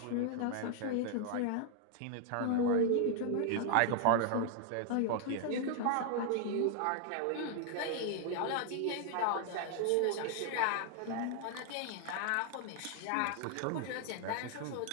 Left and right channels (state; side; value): different; both; correlation 0.00